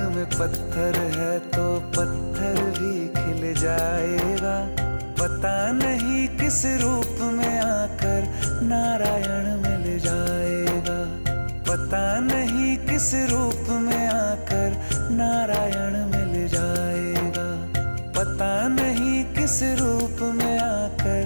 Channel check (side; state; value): both; inverted; correlation -1.00